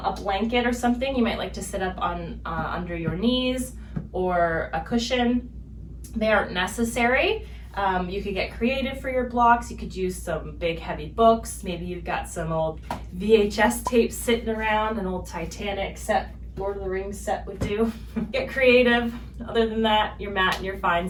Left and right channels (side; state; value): both; identical; correlation 1.00